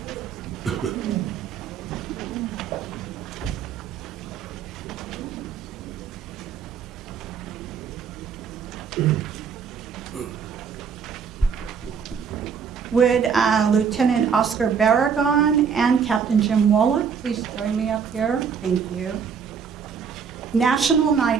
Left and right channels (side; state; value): left; quieter; 6.6 dB